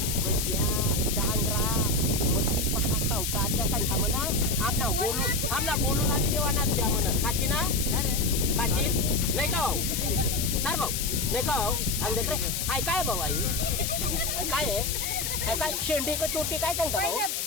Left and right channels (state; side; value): noise; left; hiss, 1 dB below the sound